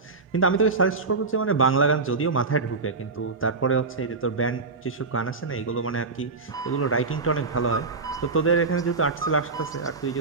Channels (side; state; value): left; quieter; 4.1 dB